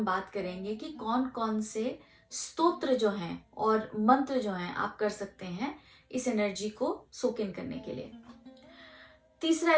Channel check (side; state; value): both; identical; correlation 1.00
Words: बात करेंगे कि कौन कौन से स्तोत्र जो हैं और मंत्र जो हैं आप कर सकते हैं इस एनर्जी को सोक इन करने के लिए। तीसरा